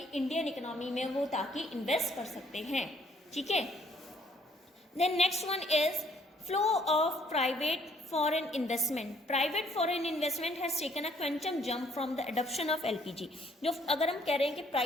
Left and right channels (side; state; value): both; normal; correlation 0.64